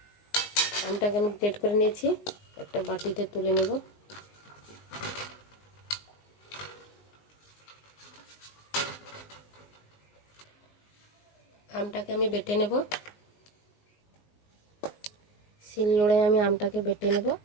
আমটাকে আমি গ্রেট করে নিয়েছি, একটা বাটিতে তুলে নেব। আমটাকে আমি বেটে নেব। শিলনোড়ায় আমি আমটাকে বেটে নেব।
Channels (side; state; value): right; late; 19 ms